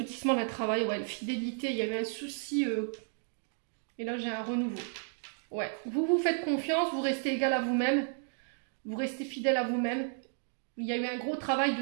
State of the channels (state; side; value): silent; left; 56 dB below the other